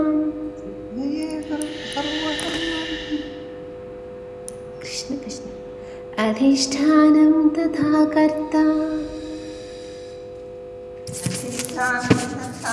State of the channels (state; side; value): identical; both; correlation 1.00